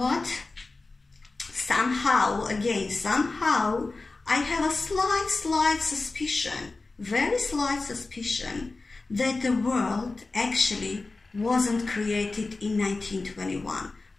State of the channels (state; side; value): quieter; right; 3.5 dB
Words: Somehow, I have a slight suspicion, very slight suspicion, that the world actually wasn't created in 1921,